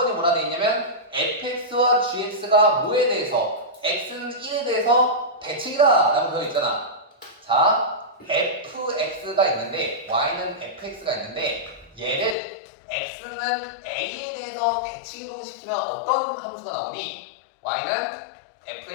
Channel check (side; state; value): right; drops out; at 12.4 s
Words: 뭐라 돼 있냐면 fx와 gx가 뭐에 대해서 x는 1에 대해서 대칭이다 라고 되어 있잖아. 자, fx가 있는데 y는 fx가 있는데 얘를 x는 a에 대해서 대칭 이동시키면 어떤 함수가 나오니? y는